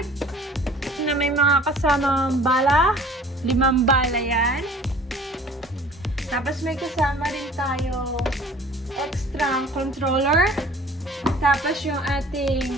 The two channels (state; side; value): normal; both; correlation 0.49